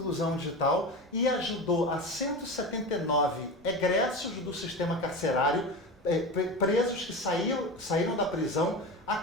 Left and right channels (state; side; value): normal; both; correlation 0.26